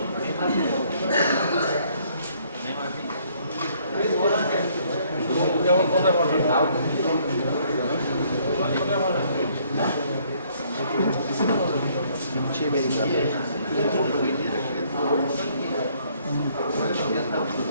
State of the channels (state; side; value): inverted; both; correlation -0.64